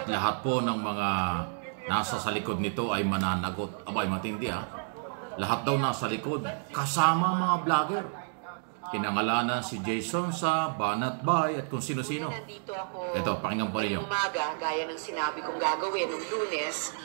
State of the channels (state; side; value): silent; left; digital silence